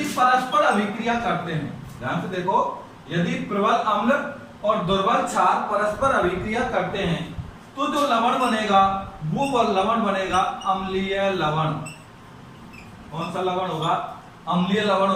परस्पर अभिक्रिया करते हैं, ध्यान से देखो, यदि प्रबल अम्ल और दुर्बल क्षार परस्पर अभिक्रिया करते हैं तो जो लवण बनेगा वो लवण बनेगा अम्लीय लवण। कौन सा लवण होगा? अम्लीय लवण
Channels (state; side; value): identical; both; correlation 1.00